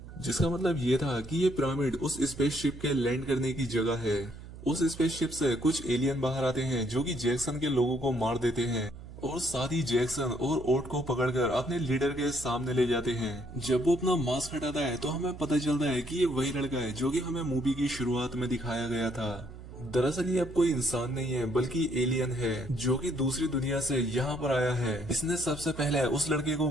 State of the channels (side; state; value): right; noise; hum, 14 dB below the sound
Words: जिसका मतलब ये था कि ये पिरामिड उस स्पेसशिप के लैंड करने की जगह है। उस स्पेसशिप से कुछ एलियन बाहर आते हैं जो कि जैक्सन के लोगों को मार देते हैं और साथ ही जैक्सन और ओट को पकड़कर अपने लीडर के सामने ले जाते हैं। जब वो अपना मास्क हटाता है तो हमें पता चलता है कि ये वही लड़का है जो कि हमें मूवी की शुरुआत में दिखाया गया था। दरअसल ये अब कोई इंसान नहीं है बल्कि एलियन है जो कि दूसरी दुनिया से यहाँ पर आया है। इसने सबसे पहले उस लड़के को